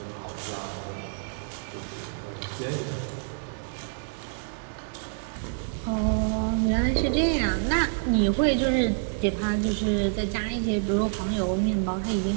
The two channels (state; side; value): silent; left; digital silence